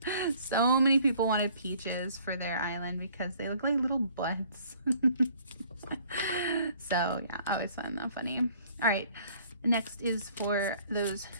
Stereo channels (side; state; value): both; inverted; correlation -0.57